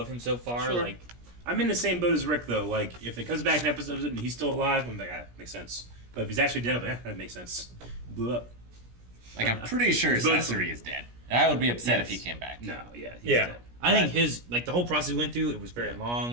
him so far. Sure. Like I'm in the same boat as Rick, though. Like, if it comes back in episodes and he's still alive, I'm like, ah, makes sense. But if he's actually dead, I'm like, that makes sense. Blew up. Like, I'm pretty sure Both Sasori is dead. And I would be upset if he Yes. came back. No, yeah. He's Yeah. dead. I think his the whole process we went through, it was very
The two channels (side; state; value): left; late; 17 ms